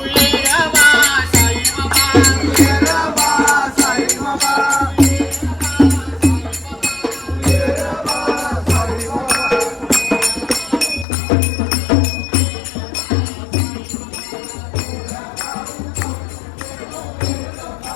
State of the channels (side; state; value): right; drops out; at 11.1 s